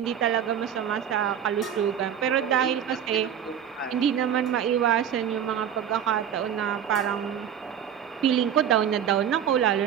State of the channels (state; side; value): quieter; left; 9.0 dB